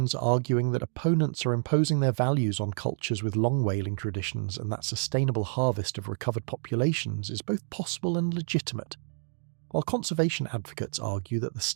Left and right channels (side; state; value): left; silent; digital silence